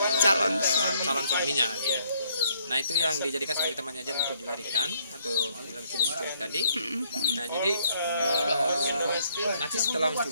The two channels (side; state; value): both; inverted; correlation -0.68